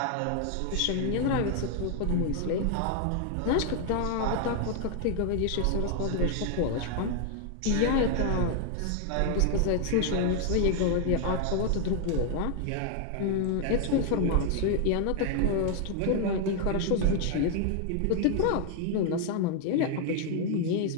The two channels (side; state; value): both; different; correlation 0.00